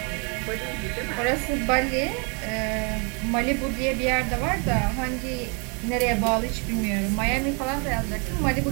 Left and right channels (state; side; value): quieter; left; 35.6 dB